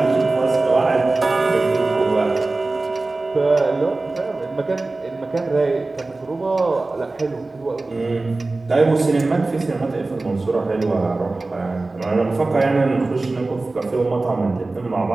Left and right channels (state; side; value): quieter; left; 3.3 dB